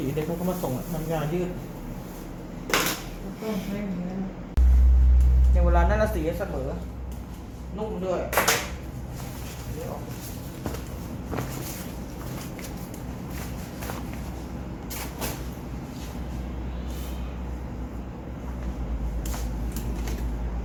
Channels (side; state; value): both; identical; correlation 1.00